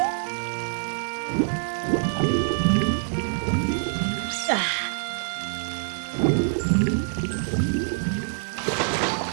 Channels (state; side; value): silent; left; 60 dB below the other